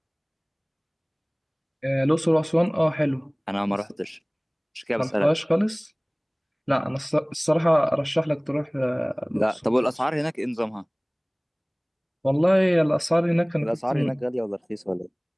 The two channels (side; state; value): both; identical; correlation 1.00